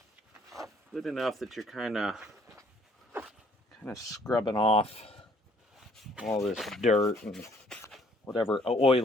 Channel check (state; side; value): normal; both; correlation 0.62